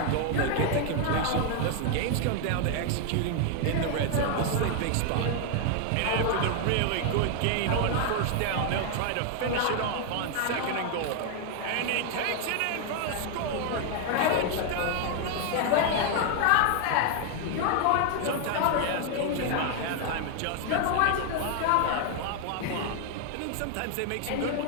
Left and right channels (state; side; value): different; both; correlation 0.00